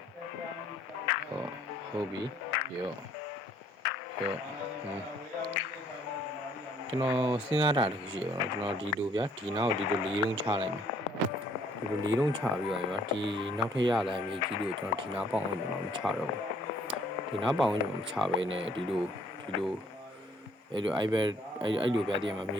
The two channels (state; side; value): normal; both; correlation 0.62